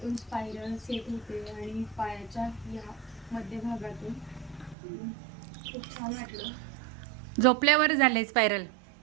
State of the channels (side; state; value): left; drops out; at 4.8 s